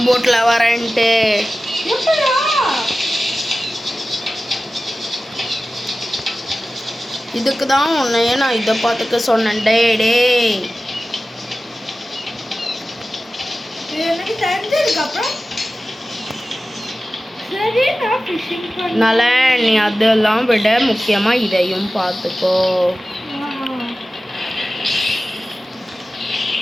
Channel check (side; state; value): both; normal; correlation 0.95